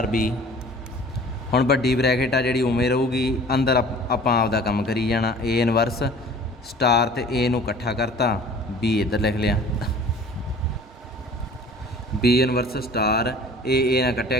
ਬੀ। ਹੁਣ ਵੱਡੀ ਬ੍ਰੈਕਟ ਆ ਜਿਹੜੀ ਉਵੇਂ ਰਹੂਗੀ, ਅੰਦਰ ਆਪਾਂ ਆਪਦਾ ਕੰਮ ਕਰੀ ਜਾਣਾ। ਏ ਇਨਵਰਸ ਸਟਾਰ ਤੇ ਏ ਨੂੰ ਇਕੱਠਾ ਕਰਤਾ, ਬੀ ਇੱਧਰ ਲਿਖ ਲਿਆ, ਬੀ ਇਨਵਰਸ ਸਟਾਰ ਏ ਨਾਲ ਕੱਟਿਆ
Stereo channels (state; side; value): normal; both; correlation 0.47